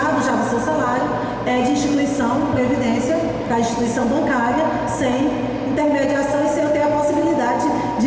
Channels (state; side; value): identical; both; correlation 1.00